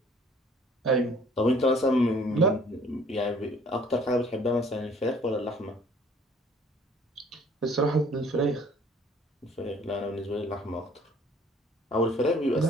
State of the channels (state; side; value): normal; both; correlation 0.56